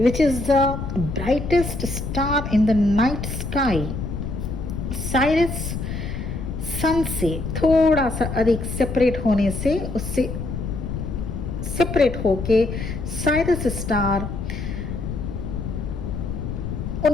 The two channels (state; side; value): noise; left; rumble, 5 dB below the sound